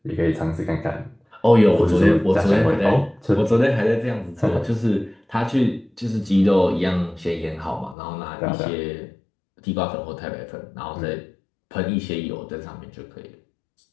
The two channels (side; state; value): right; drops out; at 8.0 s